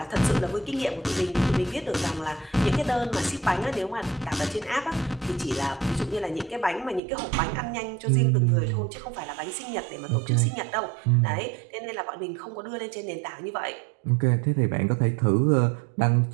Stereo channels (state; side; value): drops out; left; at 7.0 s